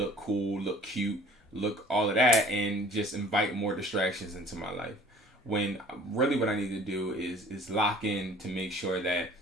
cool, look cute, look all of that, and just invite more distractions into my life. When really what I need to do is lock in to make sure that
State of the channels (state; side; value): normal; both; correlation 0.49